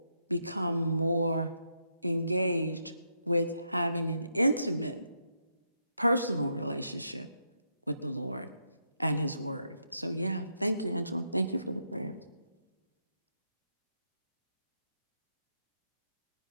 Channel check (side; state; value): both; inverted; correlation -0.80